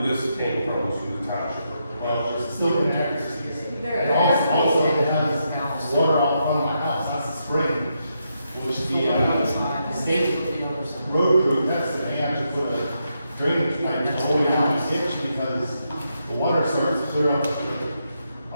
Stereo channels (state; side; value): inverted; both; correlation -0.82